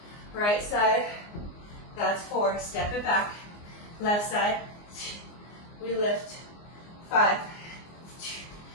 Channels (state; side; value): late; right; 24 ms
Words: Right side, that's 4, step it back, left side, we lift, 5.